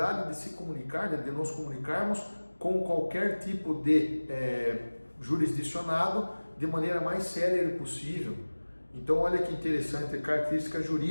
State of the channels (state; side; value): inverted; both; correlation -1.00